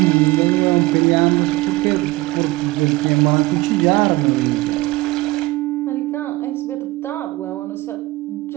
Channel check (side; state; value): left; quieter; 20.0 dB